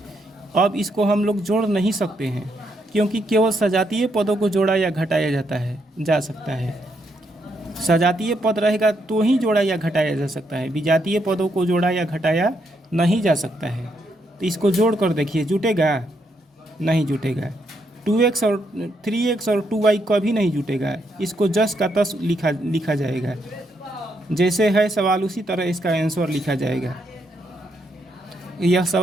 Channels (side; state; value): both; normal; correlation 0.77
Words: अब इसको हम लोग जोड़ नहीं सकते हैं, क्योंकि केवल सजातीय पदों को जोड़ा या घटाया जा सकता है। सजातीय पद रहेगा तो ही जोड़ा या घटाया जा सकता है, विजातीय पदों को जोड़ा या घटाया नहीं जा सकता है। तो इसको जोड़ कर देखिए, जुटेगा? नहीं जुटेगा। 2x और 3x और 2y कभी नहीं जुटेगा, इसको जस का तस लिखा जाएगा। जैसे है सवाल उसी तरह इसका आंसर लिखा जाएगा। यह